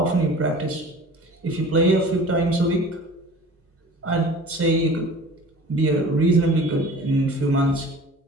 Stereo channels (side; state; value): both; normal; correlation 0.43